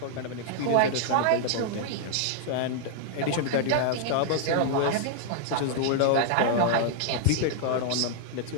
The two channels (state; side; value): different; both; correlation -0.01